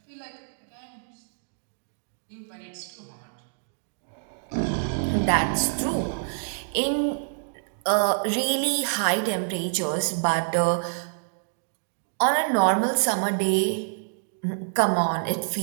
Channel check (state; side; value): silent; left; digital silence